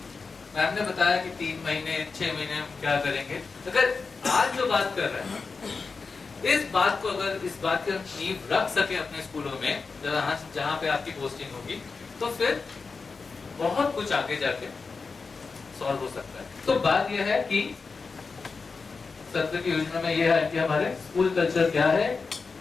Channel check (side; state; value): right; quieter; 4.6 dB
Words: मैम ने बताया कि 3 महीने 6 महीने हम क्या करेंगे। अगर आज जो बात कर रहे हैं, इस बात को अगर इस बात की नींव रख सके अपने स्कूलों में, जहाँ पे आपकी पोस्टिंग होगी, तो फिर बहुत कुछ आगे जाके सॉल्व हो सकता है। तो बात यह है कि सत्र की योजना में यह है कि हमारे स्कूल कल्चर क्या है,